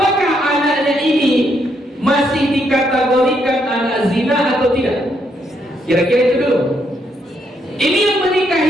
anaknya ini masih dikategorikan anak zina atau tidak? Kira-kira itu dulu. Ini yang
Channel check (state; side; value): normal; both; correlation 0.75